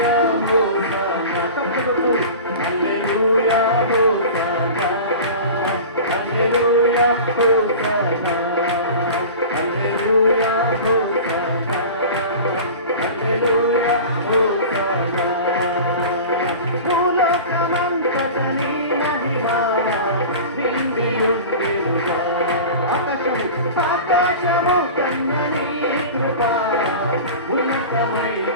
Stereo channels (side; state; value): both; inverted; correlation -0.35